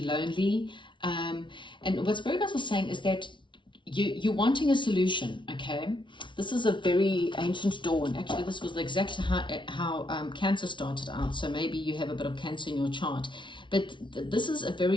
And what spirit guides are saying is that you're wanting a solution. Okay, this is a very ancient dawn. Actually, this was exactly how Cancer started out. So maybe you have a bit of Cancer in your chart. But this is a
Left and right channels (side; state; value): right; late; 0.24 ms